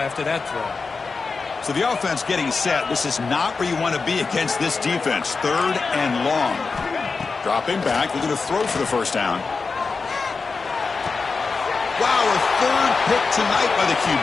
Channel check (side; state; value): right; quieter; 4.5 dB